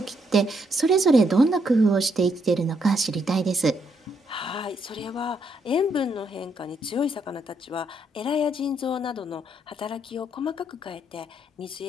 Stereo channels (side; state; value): both; normal; correlation 0.74